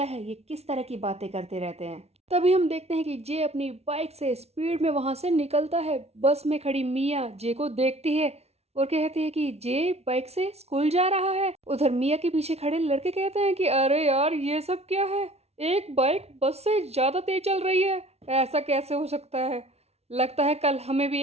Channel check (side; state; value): left; late; 0.31 ms